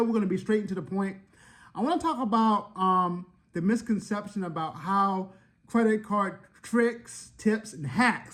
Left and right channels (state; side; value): identical; both; correlation 1.00